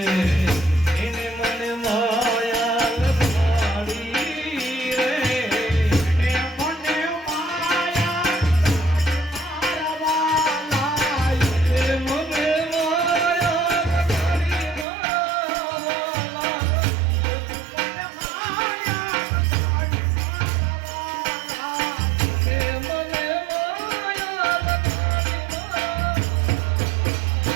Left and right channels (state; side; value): drops out; left; at 14.9 s